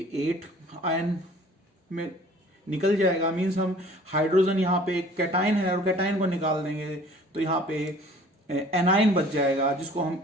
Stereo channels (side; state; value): both; normal; correlation 0.50